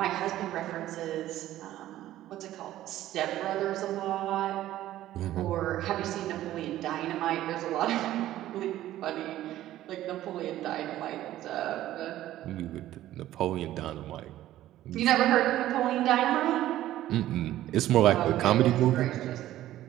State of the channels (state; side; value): quieter; left; 13.9 dB